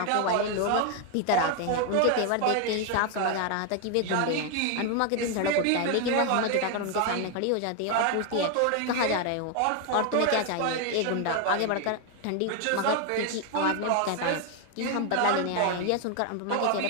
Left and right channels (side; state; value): both; different; correlation 0.01